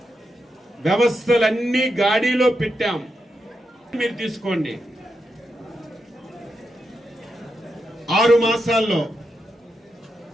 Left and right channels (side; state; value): both; normal; correlation 0.85